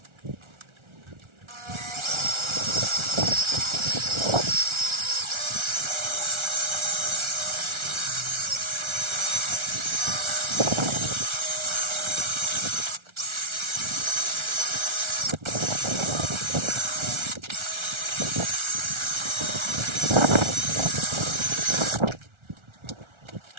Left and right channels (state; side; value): late; left; 1.4 ms